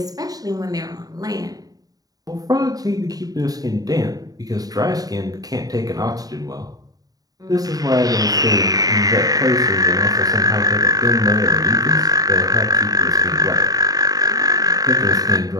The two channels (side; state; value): left; late; 0.18 ms